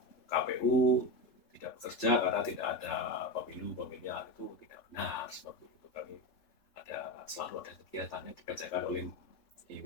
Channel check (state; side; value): late; right; 3.5 ms